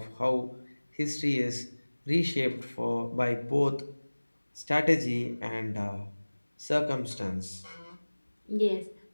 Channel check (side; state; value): both; inverted; correlation -1.00